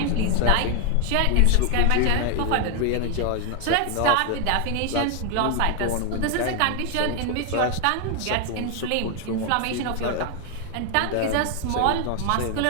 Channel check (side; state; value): both; different; correlation 0.00